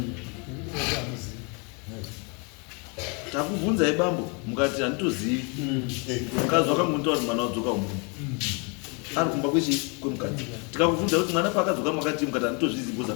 takubvunzai bambo mukati handitozivi mukadzi wakangontaura kuti mwana wadzoka umunu ari kumba kwemukadzi tikakubvunza kuti mwana paakadzoka makati mukati handitozvizi bcause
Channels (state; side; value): quieter; right; 33.6 dB